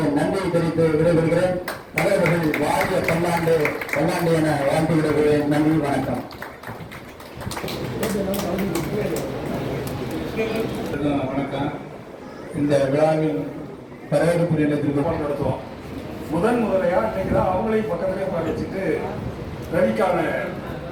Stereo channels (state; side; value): identical; both; correlation 1.00